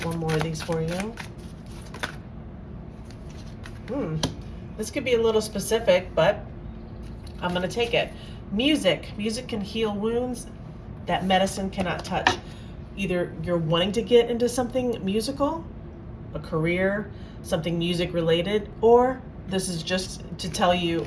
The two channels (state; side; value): identical; both; correlation 1.00